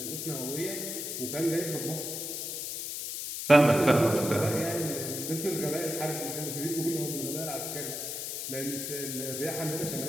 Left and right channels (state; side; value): noise; left; hiss, 4 dB below the sound